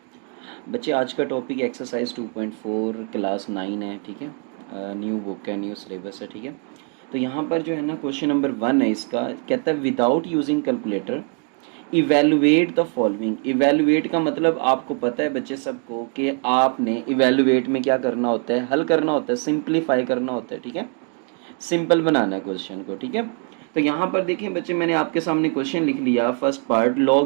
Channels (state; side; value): quieter; left; 39.3 dB